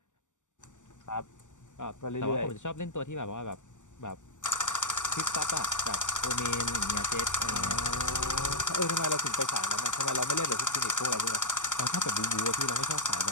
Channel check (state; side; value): late; right; 0.86 ms